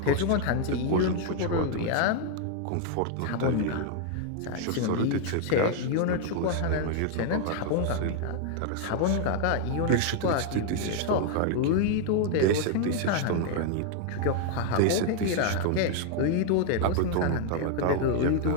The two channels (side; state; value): both; different; correlation 0.00